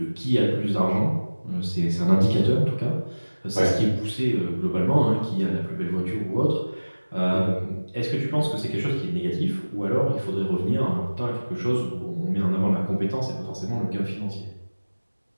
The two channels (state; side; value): inverted; both; correlation -1.00